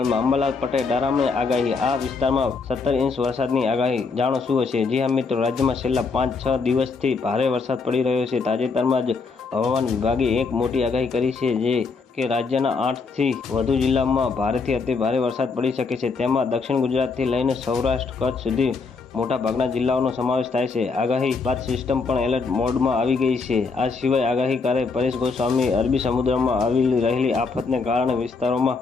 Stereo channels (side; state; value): right; quieter; 4.6 dB